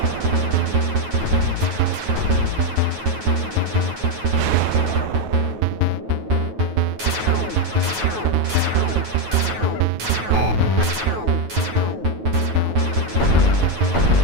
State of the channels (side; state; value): left; late; 9.3 ms